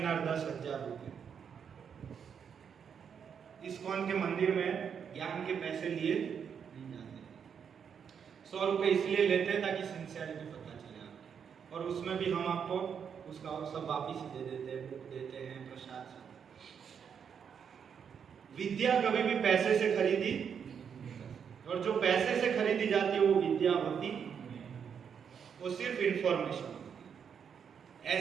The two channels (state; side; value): quieter; left; 7.3 dB